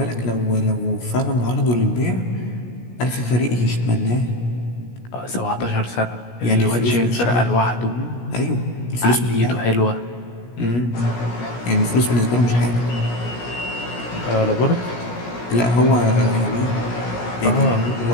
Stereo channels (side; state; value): right; late; 17 ms